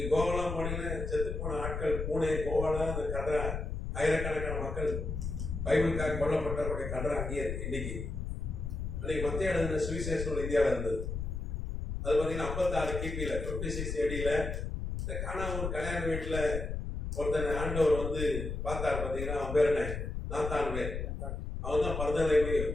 கோவாலாம் போனீங்கன்னா செத்து போன ஆட்கள், பூனே கோவால அந்த கதை ஆயிரக்கணக்கான மக்கள் பைபிளுக்காக கொல்லப்பட்டவருடைய கதை அங்கேயே இருக்கு. இன்னைக்கு மத்திய எழுதின சுவிசேஷம் இந்தியாவில் இருந்தது. அது பார்த்தீங்கன்னா 56 கிபியில 56 ஏடியில இந்த காணாமூர் கல்யாண வீட்டில் ஒருத்தனை ஆண்டவர் வந்து பார்த்தார். பார்த்தீங்கன்னா அவன் பேர் என்ன, நாத்தான் பேர். அவன் தான் பர்தலை மையம்.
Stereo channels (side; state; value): left; noise; rumble, 4 dB below the sound